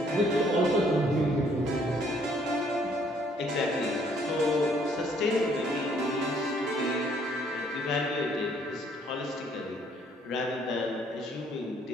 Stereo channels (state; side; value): normal; both; correlation 0.64